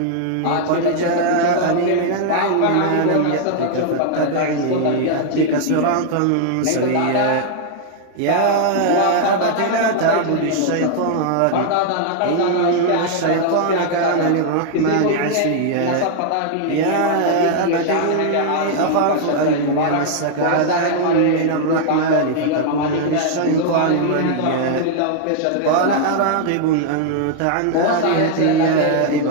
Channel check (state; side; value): different; both; correlation -0.01